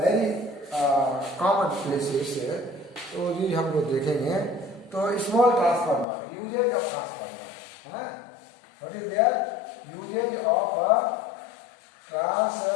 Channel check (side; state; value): right; drops out; at 6.1 s